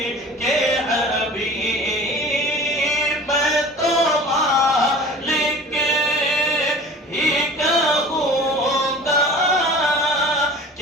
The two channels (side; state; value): both; normal; correlation 0.42